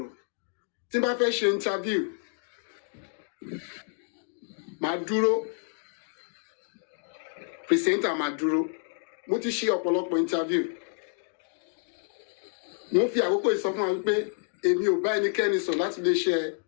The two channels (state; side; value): silent; right; 59 dB below the other